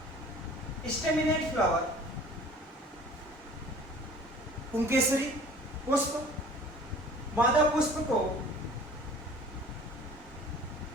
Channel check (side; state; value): both; normal; correlation 0.47